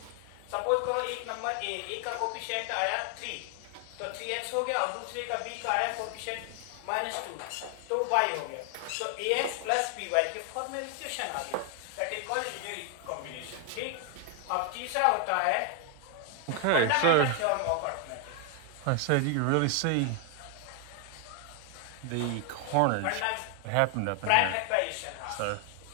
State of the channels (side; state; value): both; different; correlation 0.00